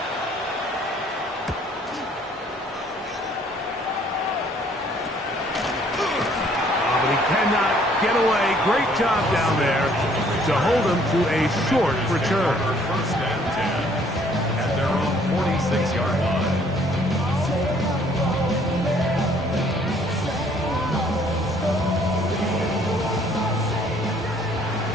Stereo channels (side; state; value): both; normal; correlation 0.61